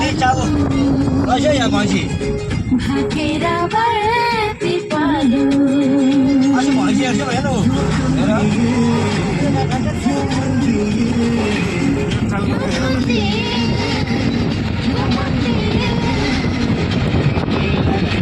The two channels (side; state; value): both; identical; correlation 1.00